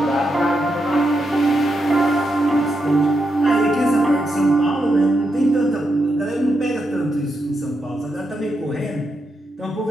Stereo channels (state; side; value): normal; both; correlation 0.84